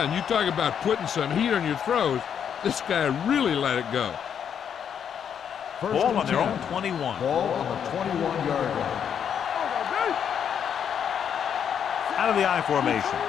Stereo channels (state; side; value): quieter; right; 8.2 dB